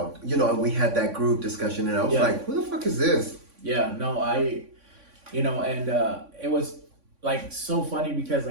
And we had that group discussion, and I was like, who the fuck is this? Yeah, no, and it was like so funny because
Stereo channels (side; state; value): left; late; 3.5 ms